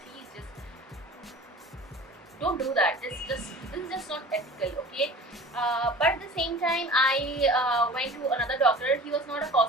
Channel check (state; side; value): normal; both; correlation 0.40